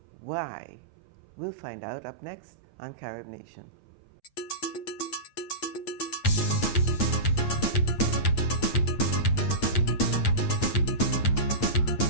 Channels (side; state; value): right; late; 8.7 ms